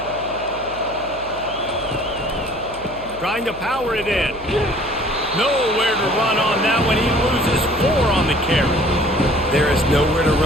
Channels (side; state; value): left; noise; hum, 18 dB below the sound